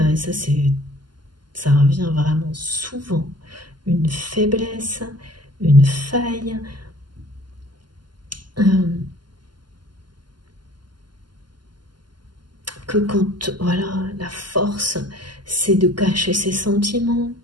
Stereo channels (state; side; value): late; left; 0.71 ms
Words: ça revient vraiment souvent, une faiblesse, une faille, que quand, voilà, la force, c'est de cacher ses sentiments.